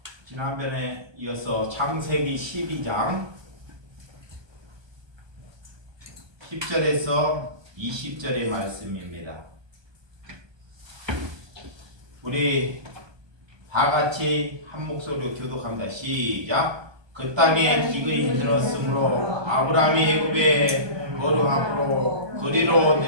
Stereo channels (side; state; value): left; late; 1.2 ms